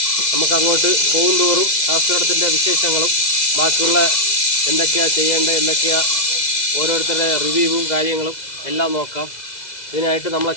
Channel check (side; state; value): right; late; 2.0 ms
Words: നമുക്ക് അങ്ങോട്ട് പോകും തോറും അഗസ്ത്യറുടത്തിൻ്റെ വിശേഷങ്ങളും ബാക്കിയുള്ള എന്തൊക്കെയാണ് ചെയ്യേണ്ടത്, എന്തൊക്കെയാണ് ഓരോരുത്തരുടെ റിവ്യൂവും കാര്യങ്ങളും എല്ലാം നോക്കാം. ഇതിനായിട്ട് നമ്മളെ